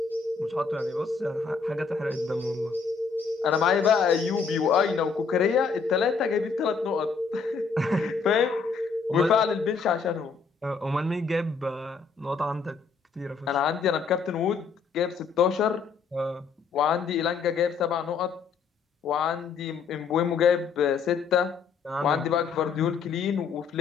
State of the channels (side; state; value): right; quieter; 5.4 dB